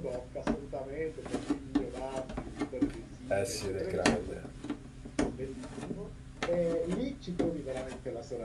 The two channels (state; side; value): identical; both; correlation 1.00